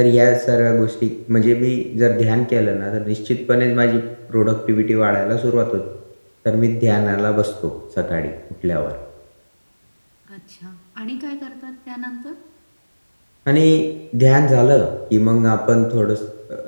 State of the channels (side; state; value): both; inverted; correlation -1.00